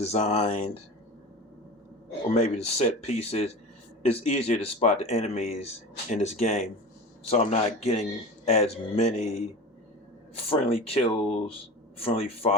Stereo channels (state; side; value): normal; both; correlation 0.32